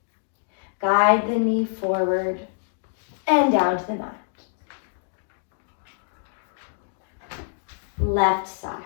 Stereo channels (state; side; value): silent; right; digital silence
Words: Guide the knee forward and down to the mat. Left side.